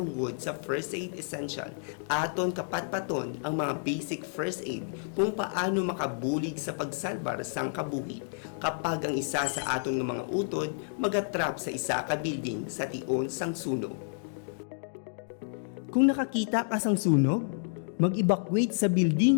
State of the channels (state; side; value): silent; right; digital silence